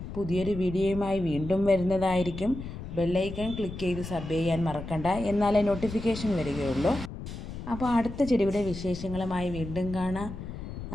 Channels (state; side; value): noise; left; rumble, 9 dB below the sound